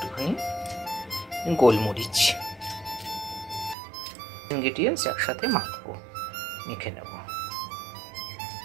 গোলমরিচ। ইনগ্রেডিয়েন্টস একসাথে মাখবো, মেখে নেব।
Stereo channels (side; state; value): left; drops out; at 3.8 s